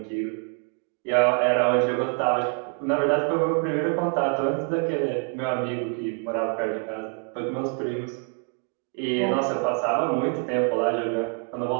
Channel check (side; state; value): left; quieter; 39.2 dB